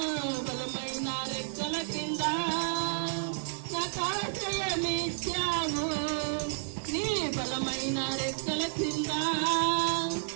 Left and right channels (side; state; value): left; silent; digital silence